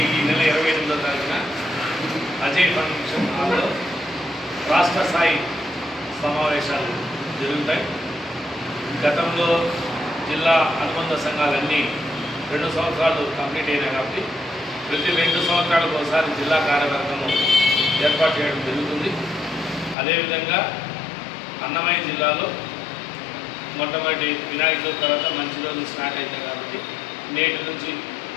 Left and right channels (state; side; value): drops out; right; at 20.0 s